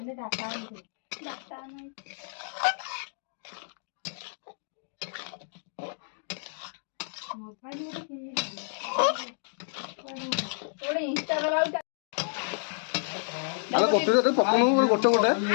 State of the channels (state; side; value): silent; right; digital silence